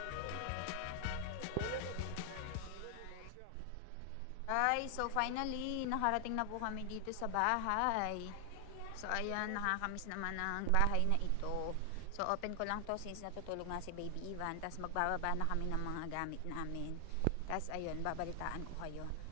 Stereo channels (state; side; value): different; both; correlation 0.00